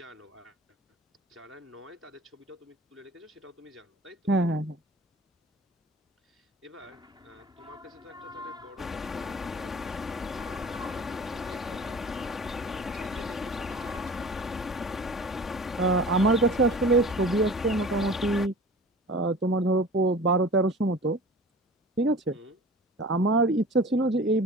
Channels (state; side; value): normal; both; correlation 0.41